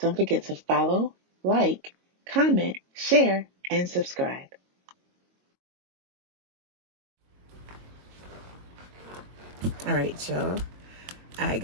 forget to follow, like, comment, share, and subscribe. Alright, y'all. I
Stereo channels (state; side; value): late; left; 22 ms